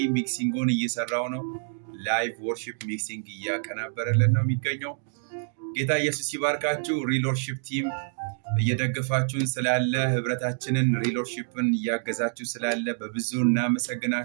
ሚክሲንጉን እየሰራው ነው። ላይቭ ወርሺፕ ሚክሲንግ እያቀናበረልን ነው የሚገኘው። ጌታ ኢየሱስ ይባርካችሁ። ሪል ወርሺፕ ቲም እየደገፋችሁን ስላለ፣ ህብረታችንን ሪል ወርሺፕን እያገዛችሁ ስላለ በብዙ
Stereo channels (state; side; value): silent; left; digital silence